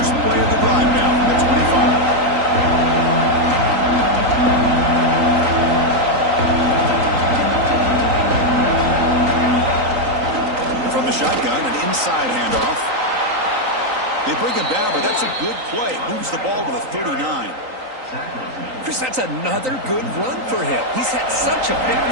play of the drive now from the 25. From the shotgun, an inside handoff. They bring him down, but that's a good play. Moves the ball to the 39. Chris, that's another good run for him. He's had such a big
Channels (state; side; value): late; left; 3.9 ms